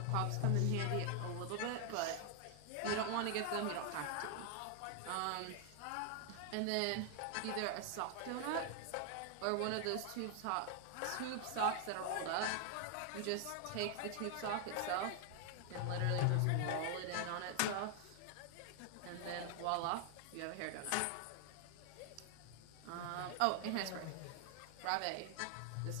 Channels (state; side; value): different; both; correlation 0.00